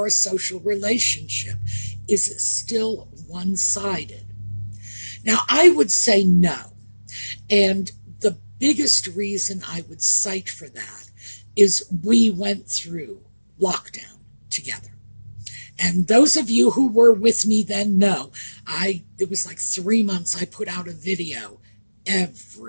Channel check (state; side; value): inverted; both; correlation -1.00